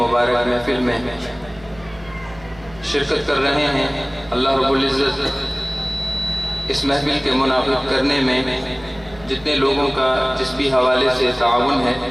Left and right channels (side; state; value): right; noise; hum, 22 dB below the sound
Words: محفل میں شرکت کر رہے ہیں اللہ رب العزت اس محفل کے منعقد کرنے میں جتنے لوگوں کا جس بھی حوالے سے تعاون ہے